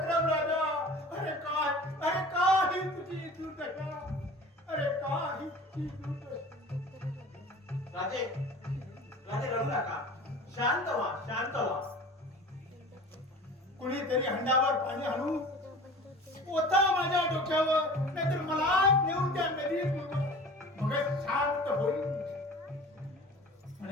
राजा, अरे काही तुझी दुर्दशा, अरे काही तुझी दुर्दशा. राजे राजे रडू नका. शांत व्हा, शांत व्हा. कुणीतरी हंडावर पाणी आणू ओता माझ्या डोक्यावर, नाहीतर मला नेऊन त्या नदीत मग शांत होईल.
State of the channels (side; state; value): both; normal; correlation 0.41